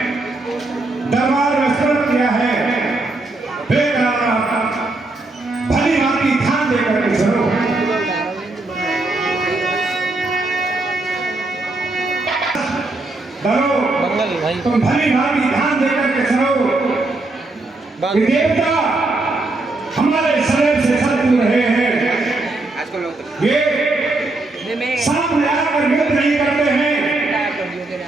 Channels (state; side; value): quieter; left; 3.0 dB